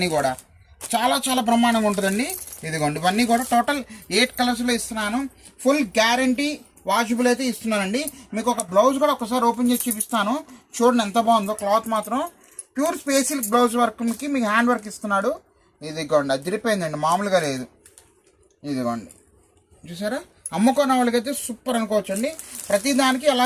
కూడా చాలా చాలా బ్రహ్మాండంగా ఉంటుందండి. ఇదిగోండి ఇవన్నీ కూడా టోటల్ 8 కలర్స్లో ఇస్తున్నాను. ఫుల్ గ్యారంటీ వాషబుల్ అయితే ఇస్తున్నానండి. మీకు ఒక బ్లౌజ్ కూడా ఒకసారి ఓపెన్ చేసి చూపిస్తాను. చూడండి ఎంత బాగుందో. క్లాత్ మాత్రం ప్యూర్ స్పేసిల్ బ్లౌజ్ వర్క్కి మీకు హ్యాండ్ వర్క్ ఇస్తున్నాడు. ఇదిగోండి అదిరిపోయిందండి, మామూలుగా లేదు. ఇదిగోండి చూసారా? అమ్ముకున్న వాళ్ళకైతే సూపర్ అనుకోవచ్చండి. ప్రతిదానికి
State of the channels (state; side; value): identical; both; correlation 1.00